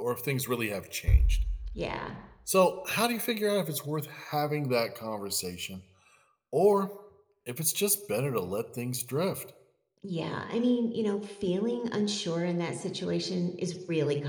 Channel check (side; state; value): both; identical; correlation 1.00